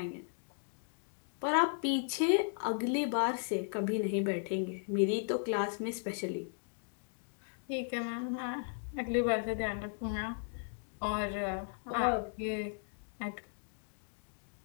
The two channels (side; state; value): right; silent; digital silence